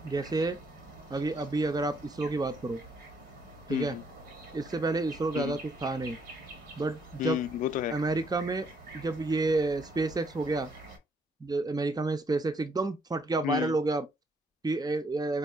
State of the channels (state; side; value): normal; both; correlation 0.70